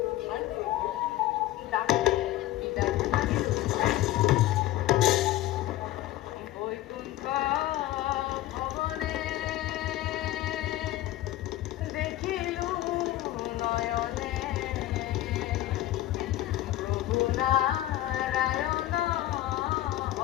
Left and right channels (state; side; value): quieter; right; 15.0 dB